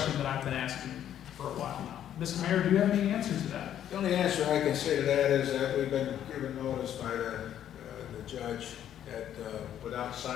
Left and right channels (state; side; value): quieter; right; 10.6 dB